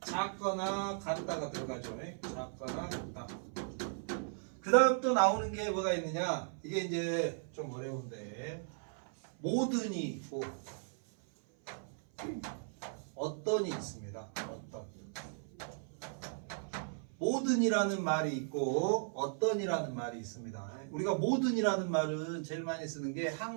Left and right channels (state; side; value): silent; left; 53 dB below the other